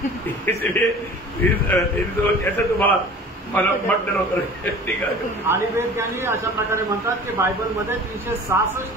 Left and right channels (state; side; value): normal; both; correlation 0.42